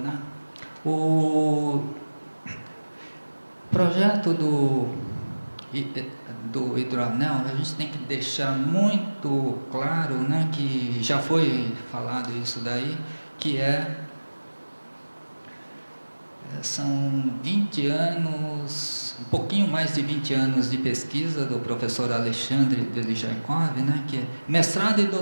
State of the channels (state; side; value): inverted; both; correlation -1.00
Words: o projeto do hidroanel, a gente tem que deixar muito claro, né, que já foi falado isso daí, que são 20 anos, um pouquinho mais de 20 anos de pesquisa do professor Alexandre Delijaikov, né, que é mestrado e